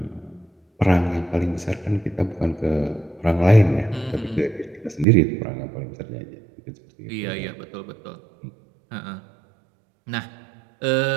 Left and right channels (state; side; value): drops out; left; at 5.1 s